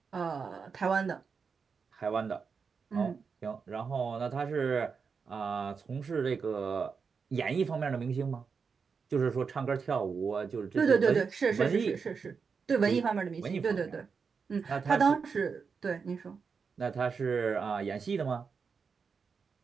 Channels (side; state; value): left; quieter; 5.6 dB